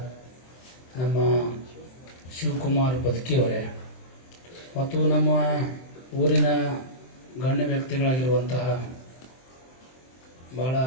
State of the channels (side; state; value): right; late; 23 ms